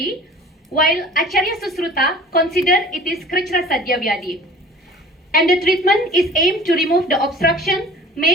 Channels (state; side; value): normal; both; correlation 0.45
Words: while Acharya Susruta consider it is Krichra Sadhya Vyadi. And the treatment is aimed to remove the obstruction